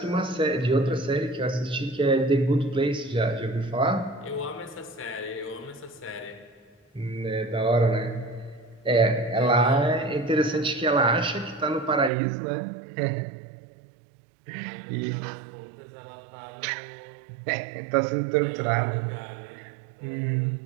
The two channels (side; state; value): left; drops out; at 12.1 s